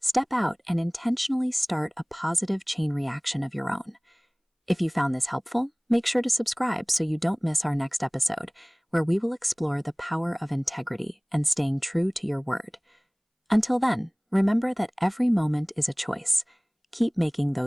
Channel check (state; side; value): identical; both; correlation 1.00